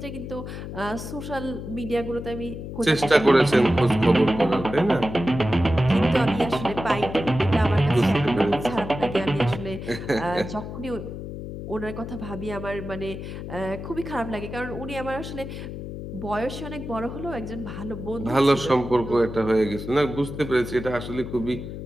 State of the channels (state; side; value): noise; left; hum, 8 dB below the sound